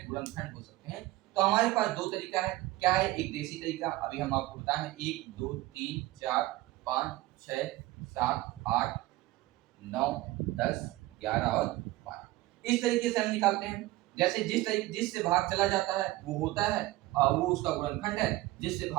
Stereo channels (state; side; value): quieter; left; 18.1 dB